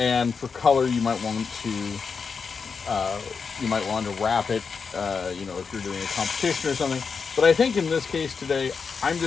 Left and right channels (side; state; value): right; quieter; 5.5 dB